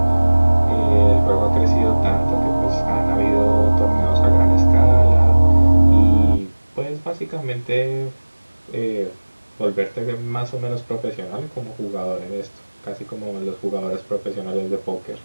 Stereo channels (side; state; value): both; inverted; correlation -1.00